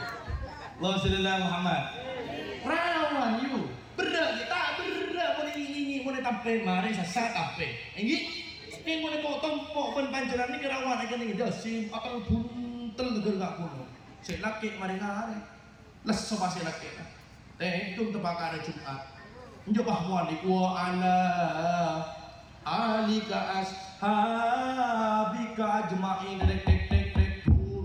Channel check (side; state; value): both; identical; correlation 1.00